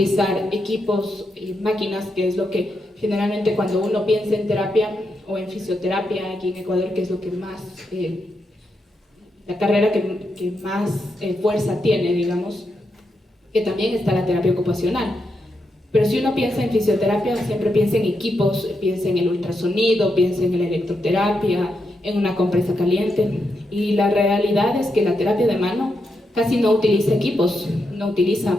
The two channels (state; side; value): normal; both; correlation 0.84